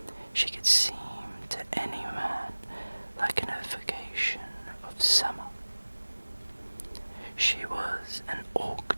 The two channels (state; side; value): inverted; both; correlation -1.00